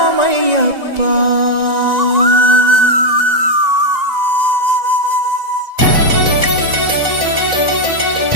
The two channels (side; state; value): left; late; 1.9 ms